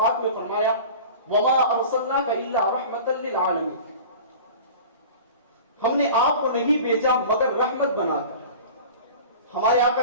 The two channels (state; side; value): inverted; both; correlation -0.39